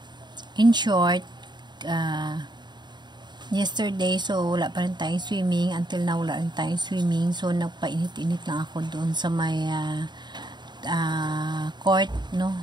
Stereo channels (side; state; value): left; late; 0.21 ms